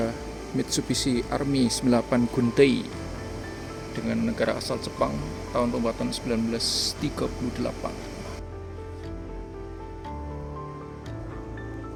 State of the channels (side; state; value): both; identical; correlation 1.00